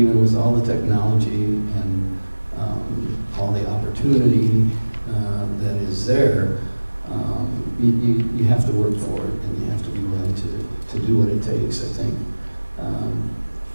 with all the technology and all the opportunity that is there. You have to work for it, and you have to be willing to do what it takes, I think.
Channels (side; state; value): both; inverted; correlation -1.00